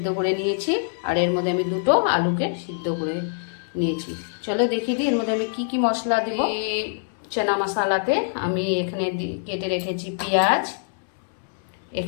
করে নিয়েছি, আর এর মধ্যে আমি দুটো আলুকে সিদ্ধ করে নিয়েছি। চলো দেখিয়ে দিই এর মধ্যে আমি কি কি মশলা দেব। চানা মশালাতে আমি এখানে কেটে রেখেছি পেঁয়াজ,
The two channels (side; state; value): right; silent; 62 dB below the other